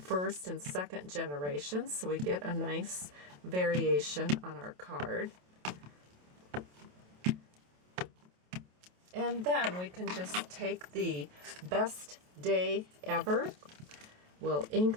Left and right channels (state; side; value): late; left; 27 ms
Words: and second generations, so we get a nice variation on our card. And then we can just take the Best Day Ever. We'll